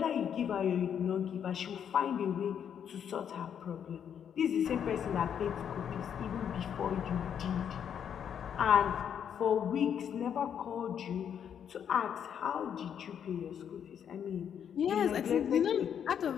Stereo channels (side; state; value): right; quieter; 8.5 dB